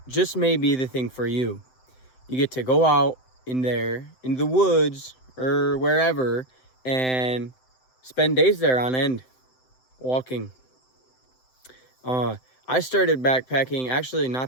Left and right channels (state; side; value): late; right; 7.8 ms